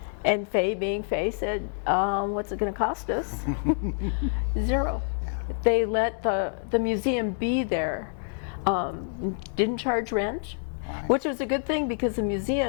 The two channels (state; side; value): silent; right; digital silence